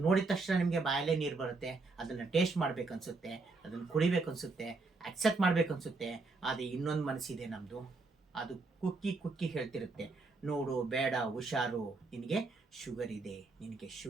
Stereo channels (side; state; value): left; quieter; 3.7 dB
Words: ನೋಡಿದ ತಕ್ಷಣ ನಿಮಗೆ ಬಾಯಲ್ಲೇ ನೀರು ಬರುತ್ತೆ, ಅದನ್ನು ಟೇಸ್ಟ್ ಮಾಡಬೇಕನ್ಸುತ್ತೆ, ಅದನ್ನು ಕುಡಿಬೇಕನ್ಸುತ್ತೆ, ಅಕ್ಸೆಪ್ಟ್ ಮಾಡಬೇಕನ್ಸುತ್ತೆ. ಆದರೆ ಇನ್ನೊಂದು ಮನಸ್ಸಿದೆ ನಮ್ಮದು, ಅದು ಕುಕ್ಕಿ ಹೇಳ್ತಿರುತ್ತೆ, ನೋಡು ಬೇಡ, ಹುಷಾರು, ನಿನಗೆ ಶುಗರ್ ಇದೆ